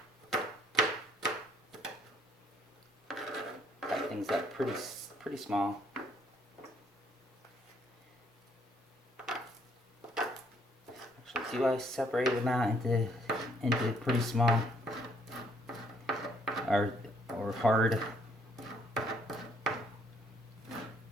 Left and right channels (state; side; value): normal; both; correlation 0.66